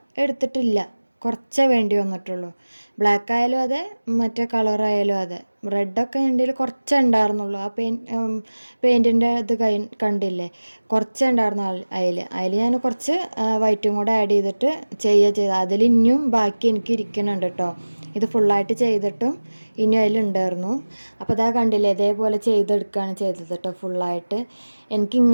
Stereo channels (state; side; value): inverted; both; correlation -1.00